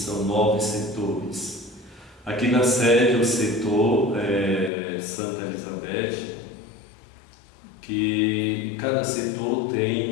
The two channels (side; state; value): right; drops out; at 4.7 s